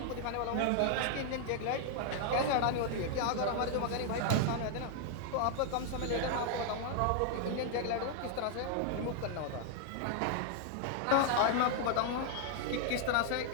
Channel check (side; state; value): both; different; correlation 0.00